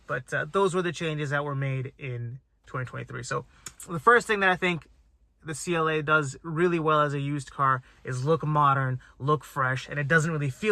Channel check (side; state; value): both; identical; correlation 1.00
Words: but those were the changes that were made in 2023. So the first thing that I think the CLA does really well as a used car is look modern, look fresh, and it doesn't really